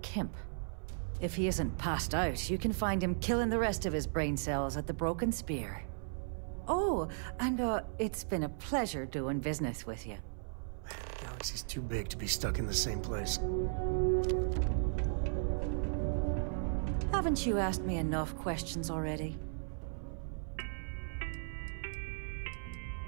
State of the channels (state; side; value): silent; left; 54 dB below the other